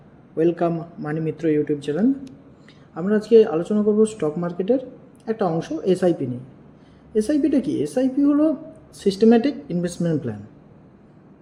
ওয়েলকাম মানি মিত্র YouTube channel. আমরা আজকে আলোচনা করব স্টক মার্কেটের একটা অংশ এসআইপি নিয়ে। এসআইপিটা কি? এসআইপি হলো সিস্টেম্যাটিক ইনভেস্টমেন্ট প্ল্যান।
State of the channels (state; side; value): identical; both; correlation 1.00